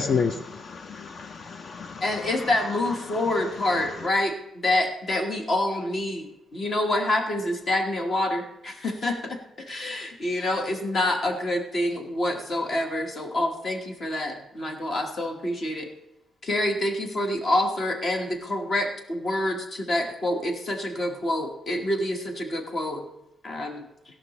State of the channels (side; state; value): both; normal; correlation 0.81